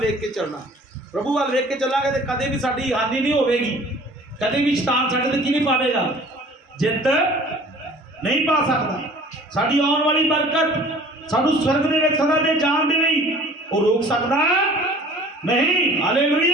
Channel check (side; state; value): both; normal; correlation 0.48